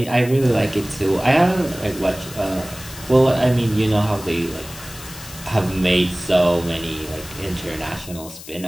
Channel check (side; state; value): left; noise; hiss, 15 dB below the sound